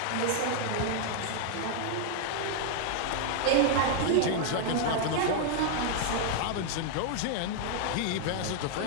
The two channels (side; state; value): both; different; correlation 0.00